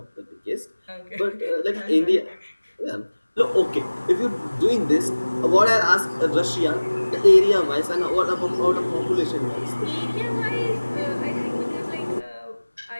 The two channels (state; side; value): inverted; both; correlation -1.00